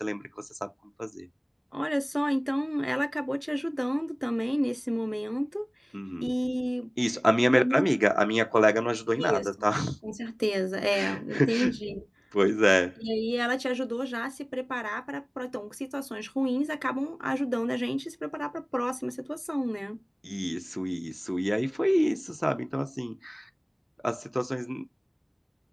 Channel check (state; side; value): identical; both; correlation 1.00